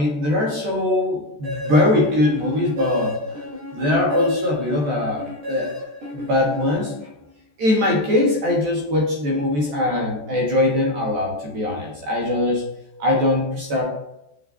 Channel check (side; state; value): left; late; 14 ms